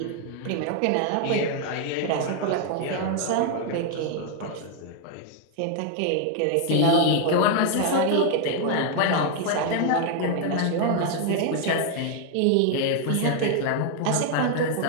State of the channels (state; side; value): different; both; correlation 0.00